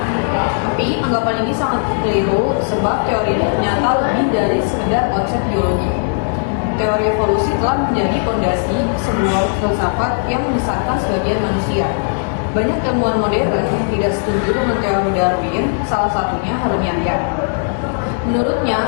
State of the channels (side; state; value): right; silent; digital silence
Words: Tapi anggapan ini sangat keliru sebab teori ini ternyata lebih dari sekedar konsep biologi. Teori evolusi telah menjadi fondasi sebuah filsafat yang menyesatkan sebagian manusia. Banyak ilmuwan modern yang tidak setuju dengan teori Darwin, salah satunya Harun Yahya. Menurutnya,